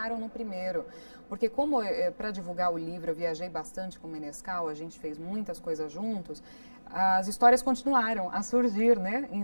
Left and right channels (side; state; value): both; inverted; correlation -1.00